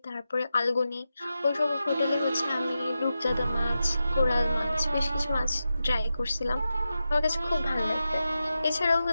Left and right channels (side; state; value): both; inverted; correlation -0.90